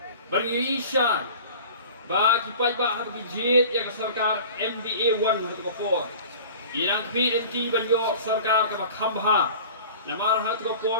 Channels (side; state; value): both; inverted; correlation -0.41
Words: bagi isya ba kipai ba hat bijit ya ke sarkar MDA 1 hat ko irang PNT banyo sarkar ka khambha namar hat ko por